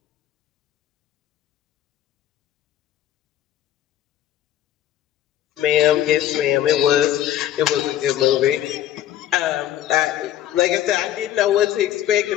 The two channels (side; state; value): right; quieter; 11.9 dB